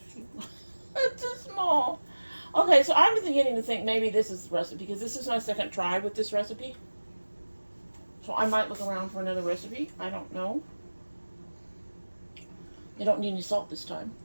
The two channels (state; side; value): inverted; both; correlation -1.00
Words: It's too small. Okay, so I'm beginning to think maybe this is the recipe, because this is my second try with this recipe. So I might look around for another recipe. I don't know. You don't need any salt this time.